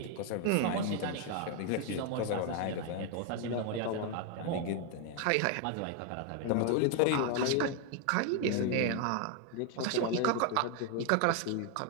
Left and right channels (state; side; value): different; both; correlation 0.01